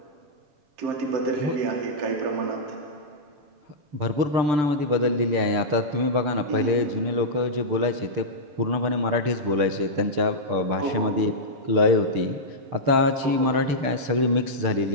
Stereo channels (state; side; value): late; left; 6.7 ms